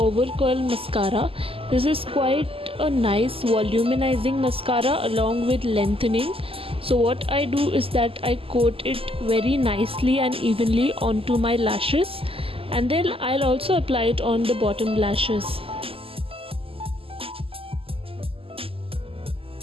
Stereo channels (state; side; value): late; left; 0.27 ms